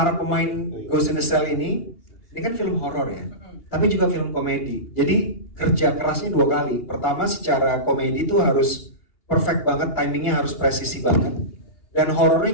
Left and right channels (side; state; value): right; late; 2.8 ms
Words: pemain Ghost in the Cell ini kan film horor ya, tapi juga film komedi. Jadi kerja kerasnya 2 kali. Pertama secara komedi itu harus perfect banget, timingnya harus presisi banget, dan horornya